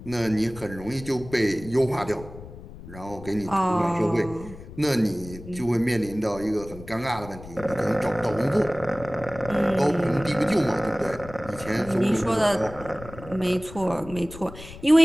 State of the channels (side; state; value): left; noise; rumble, 15 dB below the sound